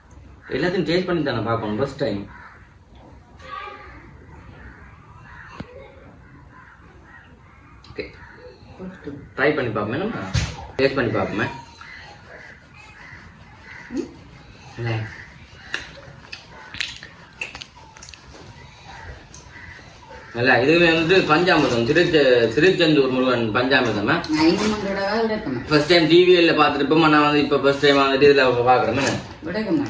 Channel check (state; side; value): identical; both; correlation 1.00